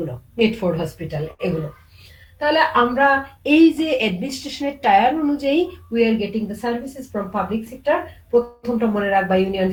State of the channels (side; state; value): both; identical; correlation 1.00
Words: মিডফোর্ড হসপিটাল, এগুলো। তাহলে আমরা এই যে অ্যাডমিনিস্ট্রেশনের টায়ার অনুযায়ী we are getting the services from public sector. প্রথমটা মনে রাখবা, ইউনিয়ন